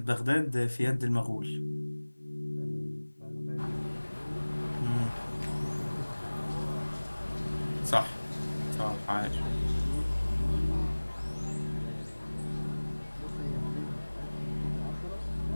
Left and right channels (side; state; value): both; inverted; correlation -1.00